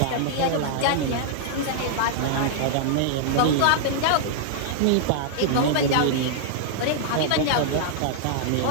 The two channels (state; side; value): different; both; correlation -0.01